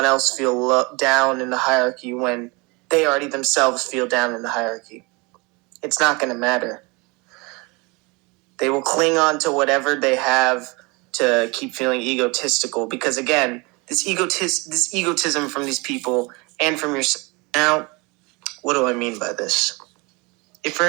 else feel down in the hierarchy when they already themselves feel down in the hierarchy. It's not going to matter. They will cling on to whatever they have to keep feeling egotistical because, again, this egotism from these people and from yourself. Now, what do I mean by this? If you're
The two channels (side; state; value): left; quieter; 27.1 dB